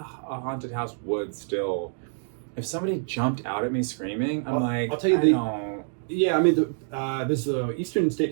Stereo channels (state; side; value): silent; left; digital silence